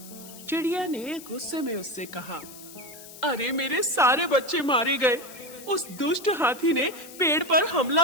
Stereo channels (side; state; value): left; noise; hiss, 16 dB below the sound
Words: चिड़िया ने गुस्से में उससे कहा, अरे मेरे सारे बच्चे मारे गए। उस दुष्ट हाथी ने पेड़ पर